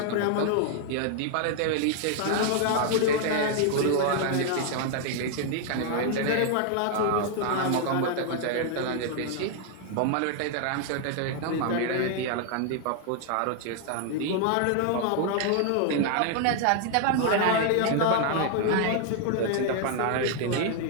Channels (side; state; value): both; different; correlation 0.00